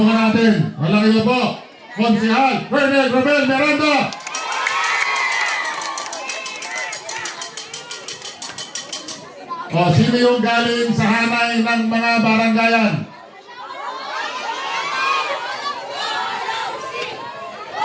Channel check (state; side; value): identical; both; correlation 1.00